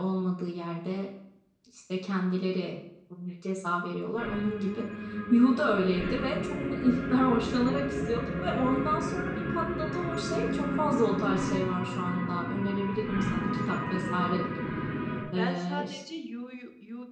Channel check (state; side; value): identical; both; correlation 1.00